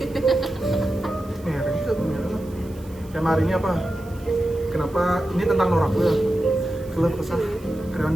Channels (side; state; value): right; noise; hiss, 25 dB below the sound